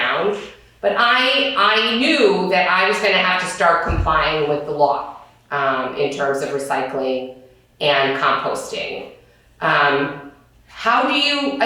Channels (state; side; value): identical; both; correlation 1.00